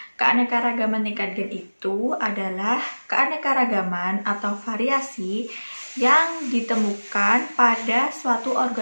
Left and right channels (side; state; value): both; inverted; correlation -1.00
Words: Keanekaragaman tingkat gen itu adalah keanekaragaman atau variasi yang ditemukan pada suatu